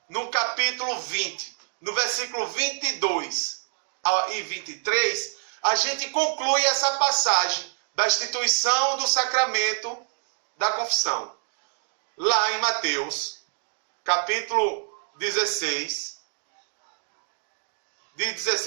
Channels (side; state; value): left; silent; 61 dB below the other